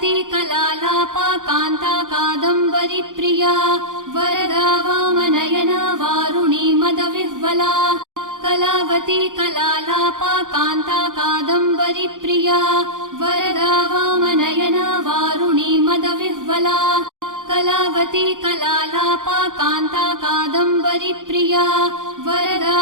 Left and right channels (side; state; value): left; late; 0.88 ms